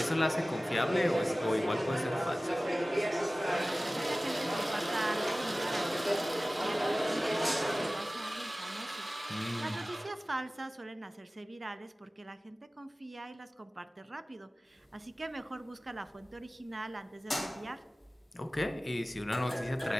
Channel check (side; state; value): both; normal; correlation 0.97